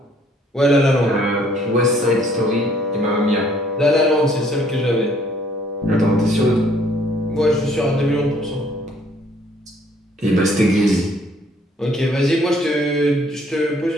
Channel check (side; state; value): both; normal; correlation 0.62